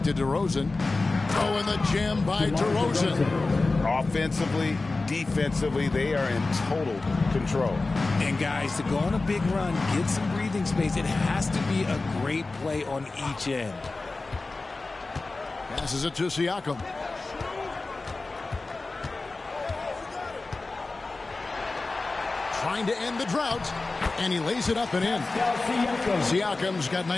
to DeRozan. Oh, and the jam by DeRozan. Offensively, defensively, they are in total control. And guys, to go on a big run, get some breathing space, it has to be a great play on each end. Passes it to Siakam. Trying to end the drought, and he lays it up and in. Siakam's got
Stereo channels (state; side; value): quieter; right; 3.5 dB